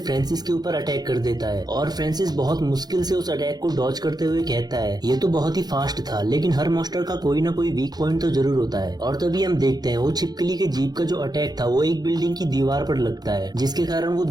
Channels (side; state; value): left; late; 0.19 ms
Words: फ्रांसिस के ऊपर अटैक कर देता है। और फ्रांसिस बहुत मुश्किल से उस अटैक को डॉज करते हुए कहता है ये तो बहुत ही फास्ट था, लेकिन हर मॉन्स्टर का कोई ना कोई वीक पॉइंट तो जरूर होता है। और तभी हम देखते हैं वो छिपकली के जीप का जो अटैक था वो एक बिल्डिंग की दीवार पर लगता है, जिसके कारण वो